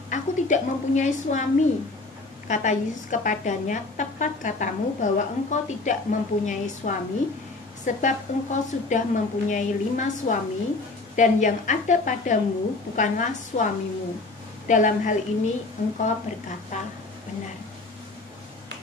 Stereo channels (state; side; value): quieter; right; 3.4 dB